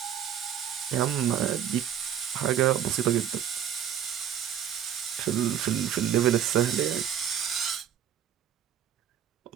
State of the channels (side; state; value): left; quieter; 9.6 dB